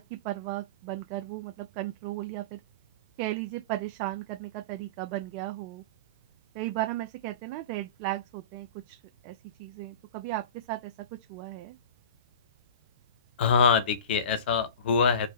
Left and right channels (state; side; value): inverted; both; correlation -0.32